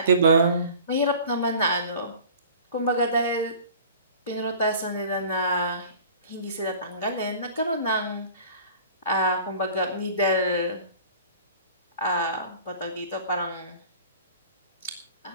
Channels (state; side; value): inverted; both; correlation -0.45